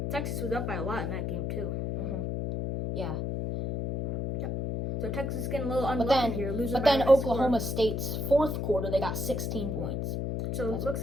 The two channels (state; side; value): noise; left; hum, 2 dB below the sound